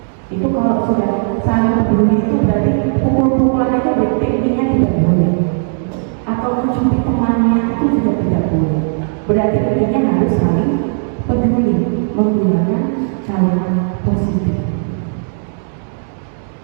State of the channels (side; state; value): left; silent; 69 dB below the other